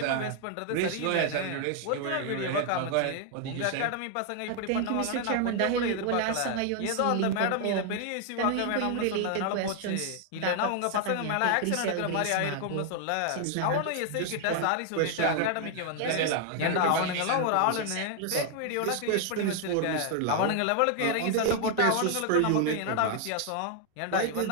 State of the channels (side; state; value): both; different; correlation 0.00